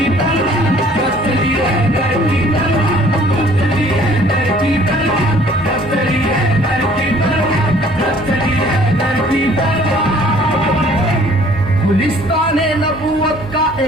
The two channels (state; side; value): normal; both; correlation 0.56